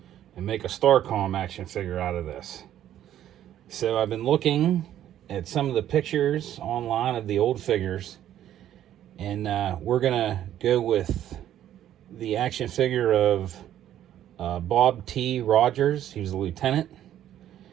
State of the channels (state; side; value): quieter; left; 11.6 dB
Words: and make a StarCom action figure out of this. So I've been looking at some of the pictures online of the old figures, and we're gonna go with the action figure of Bob T. Rogers. He was a lieutenant,